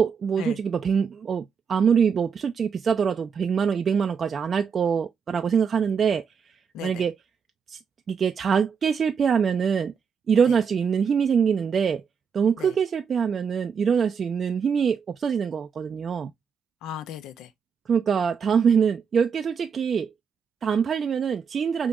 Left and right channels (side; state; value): left; quieter; 6.5 dB